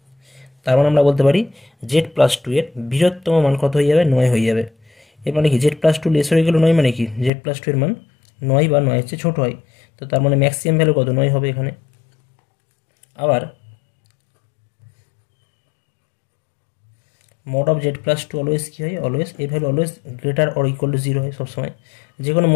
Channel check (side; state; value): right; drops out; at 7.3 s